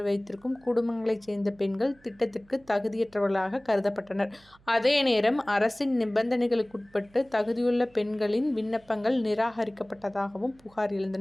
வைத்திருக்கும் குடும்பங்களைச் சேர்ந்த பெண்கள் திட்டத்திற்கு தகுதியற்றவர்களாக கருதப்பட்டனர். அதே நேரம் அரசின் நிபந்தனைகளுக்குட்பட்டு தகுதியுள்ள பெண்களின் விண்ணப்பங்கள் நிராகரிக்கப்பட்டதாகவும் புகார்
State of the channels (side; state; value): right; noise; hum, 29 dB below the sound